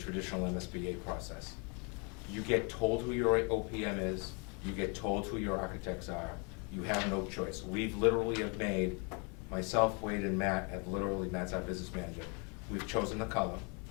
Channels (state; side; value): quieter; right; 33.9 dB